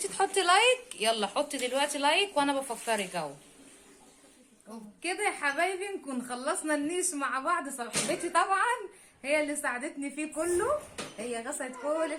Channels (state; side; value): identical; both; correlation 1.00